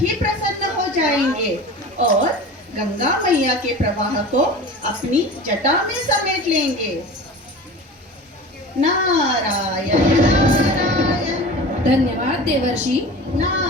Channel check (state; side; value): normal; both; correlation 0.36